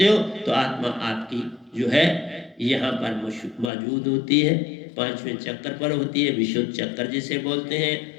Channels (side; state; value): right; drops out; at 3.7 s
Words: हो तो आत्मा आपकी जो है यहाँ पर मौजूद होती है, 5वें चक्कर पर होती है, विशुद्ध चक्कर जिसे बोलते